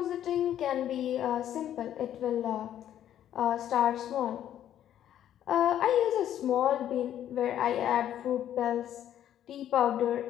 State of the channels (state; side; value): quieter; right; 11.0 dB